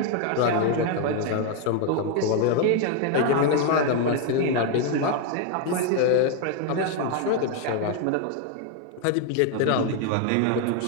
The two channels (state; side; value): different; both; correlation 0.01